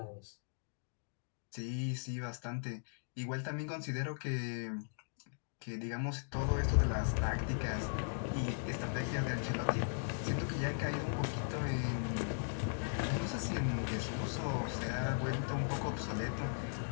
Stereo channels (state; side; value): silent; right; digital silence